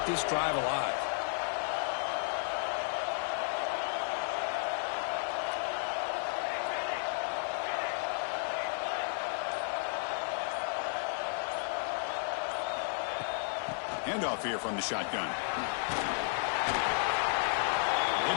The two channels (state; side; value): silent; right; 56 dB below the other